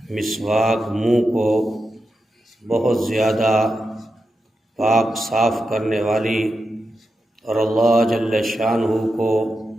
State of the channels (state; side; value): normal; both; correlation 0.88